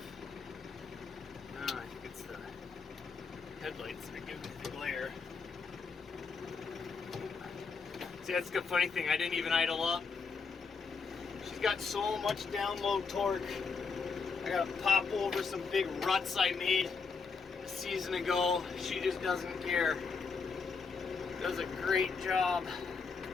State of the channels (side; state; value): right; quieter; 5.1 dB